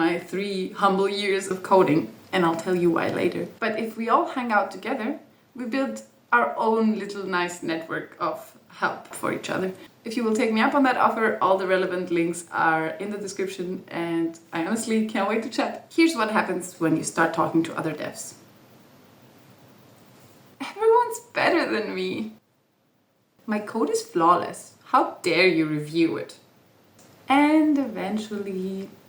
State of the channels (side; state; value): both; identical; correlation 1.00